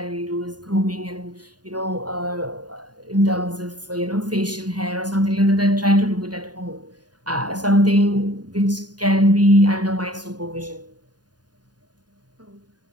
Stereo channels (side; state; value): left; late; 0.70 ms